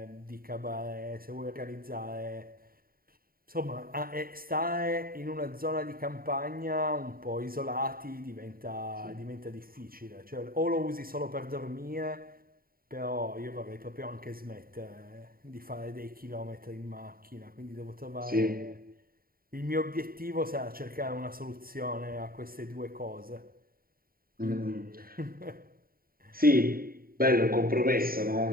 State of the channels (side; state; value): left; late; 0.43 ms